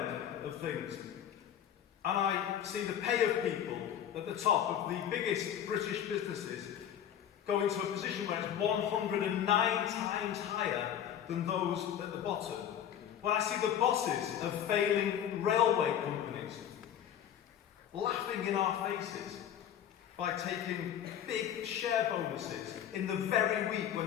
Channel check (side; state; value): right; quieter; 9.8 dB